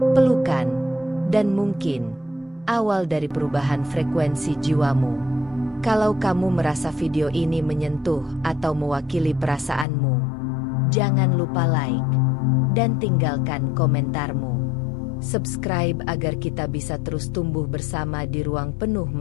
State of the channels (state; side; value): drops out; right; at 9.9 s